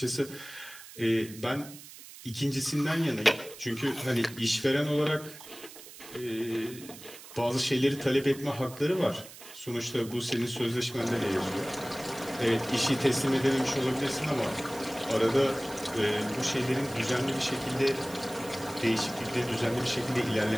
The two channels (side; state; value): right; noise; hiss, 16 dB below the sound